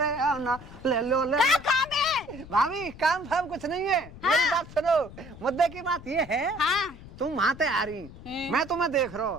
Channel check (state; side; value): noise; left; rumble, 17 dB below the sound